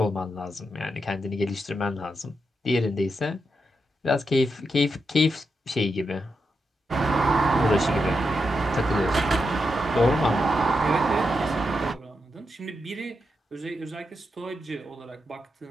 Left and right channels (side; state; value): both; normal; correlation 0.85